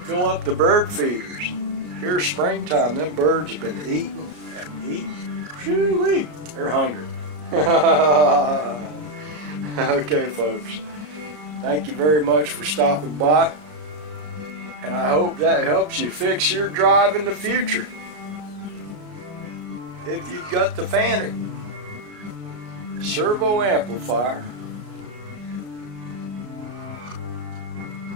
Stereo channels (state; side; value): late; left; 33 ms